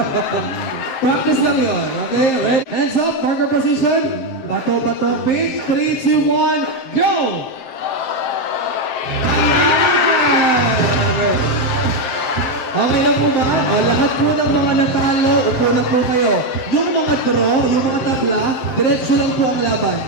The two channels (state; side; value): late; right; 7.6 ms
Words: Practice lang yon, okay? Ready? Hands up, marker position. Bato, pick. 3, 2, 1, go! Okay lang po ba? O, lahat po ng mga natalo, upo na po kayo. Yung mga draw, yung mga tabla, diretso lang po ang laban.